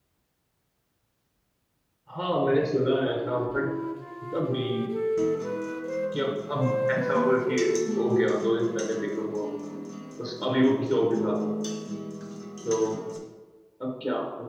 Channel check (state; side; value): identical; both; correlation 1.00